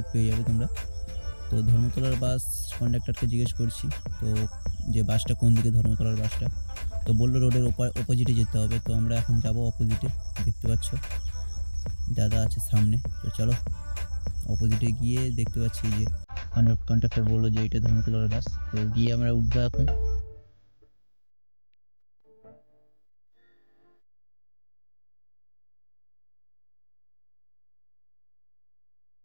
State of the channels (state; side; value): inverted; both; correlation -1.00